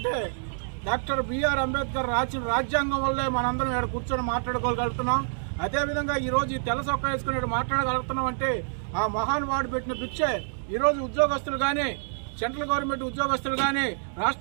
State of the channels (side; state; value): left; silent; digital silence